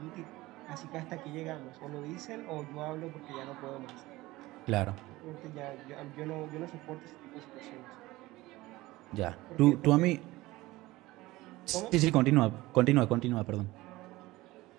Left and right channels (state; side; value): quieter; left; 19.0 dB